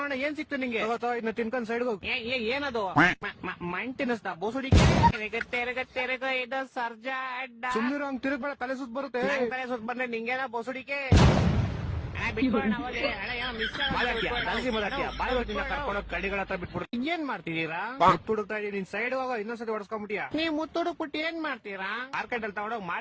ಏನ್ ಸಿಕ್ತು ನಿಂಗೆ? ತಗೋತೋ, ಇದನ್ನ ತಿನ್ಕೊಂಡ್ ಸೈಡ್ ಹೋಗ್. ಏನದು? ಮಣ್ ತಿನ್ನಿಸ್ತಾ ಬೋಸುಡಿಕೆ? ತೆರಗ ಇದು ಸರ್ಜಾ ಅಡ್ಡ. ಸುಮ್ನಿರೋ, ಹಂಗ್ ತಿರುಗ್ಬೇಡ, ತಲೆ ಸುತ್ತ ಬರುತ್ತೆ. ನಂಗ್ ತಲೆ ಸುತ್ತ ಬಂದ್ರೆ ನಿಂಗೇನ ಬೋಸುಡಿಕೆ? ಬಿಟ್ಬಿಡೋಣ ಅವಲ್ಲಿ. ಅಣ್ಣ ಏನೋ ಮಿಸ್ ಬಾಯ್ ಬರ್ತೀನಿ, ಕರ್ಕೊಂಡೋಗ್ ಕಡಿಗಳ ಹತ್ರ ಬಿಟ್ಬಿಡು. ಏನ್ ಮಾಡ್ತಿದೀರಾ? ಮುತ್ತು ಹುಡುಕ್ತಾ ಇದೀನಿ, ನಿನ್ ಸೈಡ್ ಹೋಗೋ, ಇನ್ನೊಂದ್ಸತಿ ಹೊಡ್ಸ್ಕೊಂಡ್ಬಿಟ್ಟಿಯಾ? ನೀವ್ ಮುತ್ತು ಹುಡುಕ್ಬಿಟ್ಟು ಏನ್ ಮಾಡ್ತೀರಾ? ಮಾರ್ಕೆಟ್ ಅಲ್ಲಿ ತಗೊಂಡೋಗ್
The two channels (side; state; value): both; identical; correlation 1.00